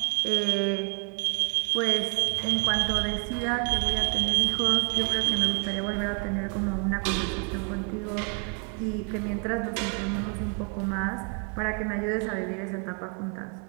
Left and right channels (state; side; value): quieter; left; 38.1 dB